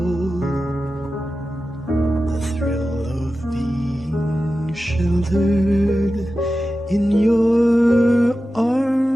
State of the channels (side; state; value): both; normal; correlation 0.93